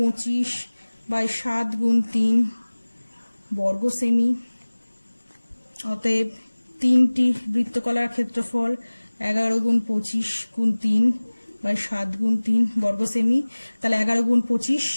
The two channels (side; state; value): both; inverted; correlation -1.00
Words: বাই 7 গুণ 3 বর্গ সেমি। অতএব 3টি বৃত্তকলার ক্ষেত্রফল 11 গুণ 25 গুণ 3 বাই 7 গুণ 3 বর্গ সেমি। তাহলে 11 গুণ 25